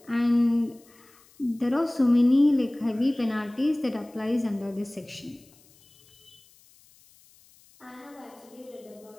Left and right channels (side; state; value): left; noise; hiss, 29 dB below the sound